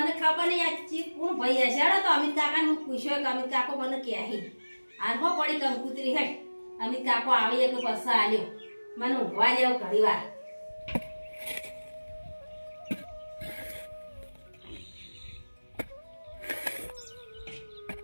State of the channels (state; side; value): inverted; both; correlation -1.00